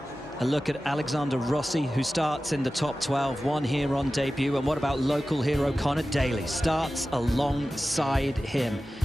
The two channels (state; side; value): normal; both; correlation 0.95